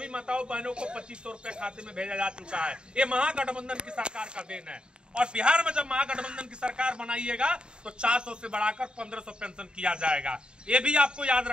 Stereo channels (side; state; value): left; late; 0.051 ms